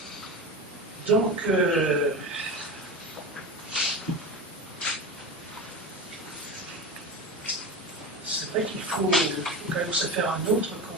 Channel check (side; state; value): both; normal; correlation 0.25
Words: des dominés. Donc, c'est vrai qu'il faut quand même se faire un autre